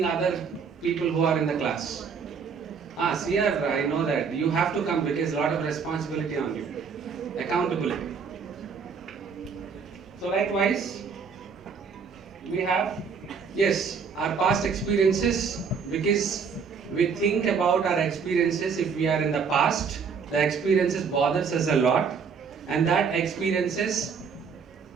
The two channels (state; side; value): quieter; left; 5.9 dB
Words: other people who are in the class. Sir, I know that you have to come because a lot of responsibility on you, accountability. So likewise, we have, yes, our past experiences, because we think about our experiences. If we are in the past, the experiences bothers us a lot, and that experiences